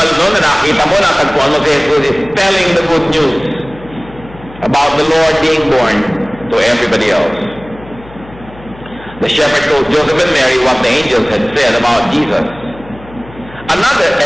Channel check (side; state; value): left; noise; hum, 20 dB below the sound